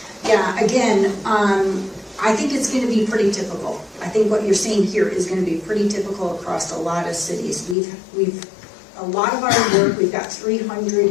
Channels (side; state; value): right; drops out; at 7.8 s